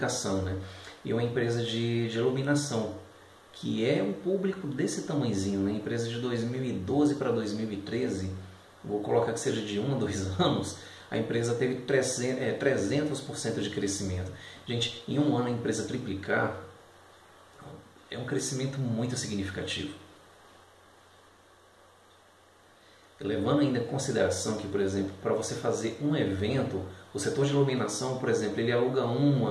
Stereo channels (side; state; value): both; identical; correlation 1.00